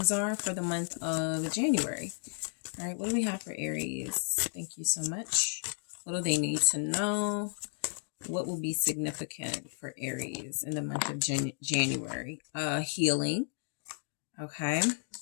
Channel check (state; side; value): silent; right; 56 dB below the other